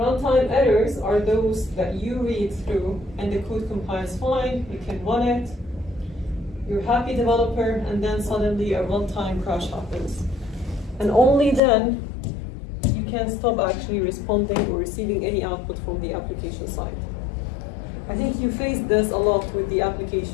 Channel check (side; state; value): right; drops out; at 11.6 s